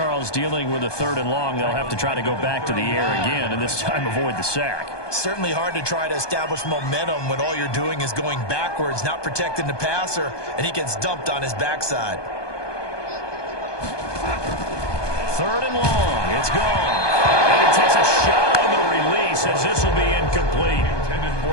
dealing with a 3rd and long. They'll have to try to go back to the air again, and this time avoid the sack. Certainly hard to try to establish momentum when all you're doing is going backwards, not protecting the passer, and he gets dumped on his backside. 3rd and long. It's gone. And he takes a shot on the release as this will be incomplete. Intended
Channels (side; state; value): right; late; 1.2 ms